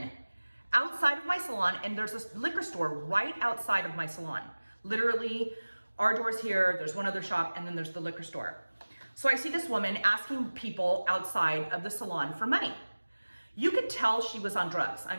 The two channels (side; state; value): both; inverted; correlation -1.00